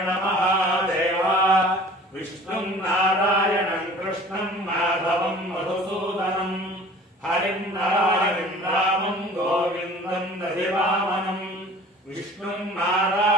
महादेव विष्णुं नारायणं कृष्णं माधवं मधुसूदनं हरिं नारायणं रामं गोविन्दं दधिवामनं विष्णुं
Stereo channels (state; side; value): normal; both; correlation 0.46